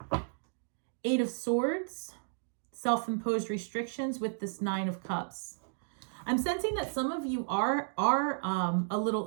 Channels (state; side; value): silent; left; digital silence